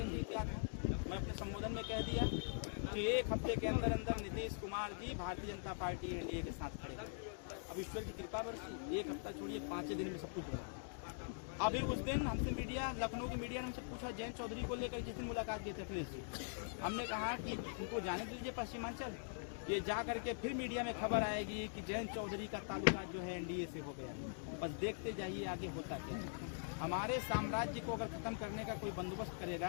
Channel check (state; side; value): silent; right; digital silence